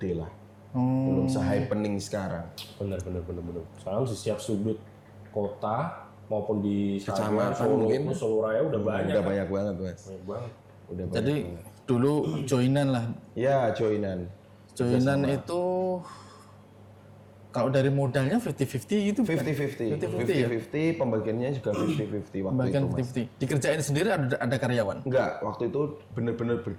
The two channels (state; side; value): identical; both; correlation 1.00